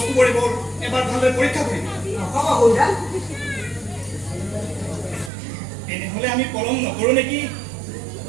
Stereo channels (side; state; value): left; drops out; at 5.3 s